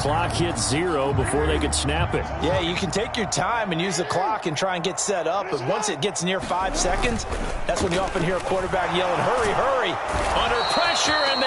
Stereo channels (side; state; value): both; identical; correlation 1.00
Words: hits 0 before they could snap it. Yeah, you can take your time and use the clock and try and get set up, but once it gets near 5 seconds, that's when you often hear a quarterback yelling, hurry, hurry. Under pressure, and